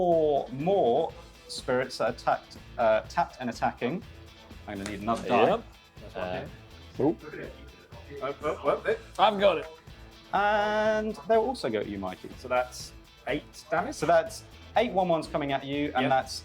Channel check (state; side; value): identical; both; correlation 1.00